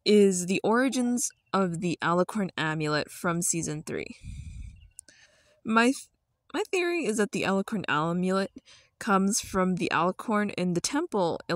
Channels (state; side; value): identical; both; correlation 1.00